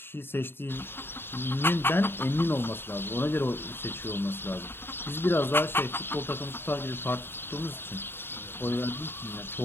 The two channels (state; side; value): late; right; 0.11 ms